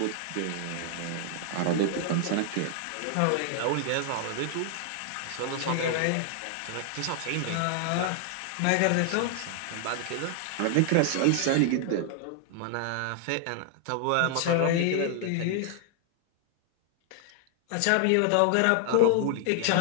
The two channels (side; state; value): both; different; correlation 0.00